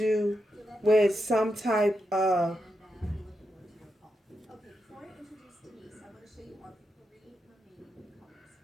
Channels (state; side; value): normal; both; correlation 0.86